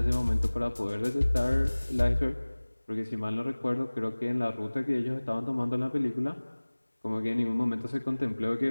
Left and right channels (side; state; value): both; inverted; correlation -1.00